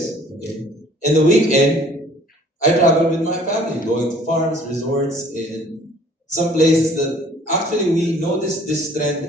Okay? And the weekend, I travel with my family, going to farms, resorts, and some places that actually we noticed this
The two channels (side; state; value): both; normal; correlation 0.55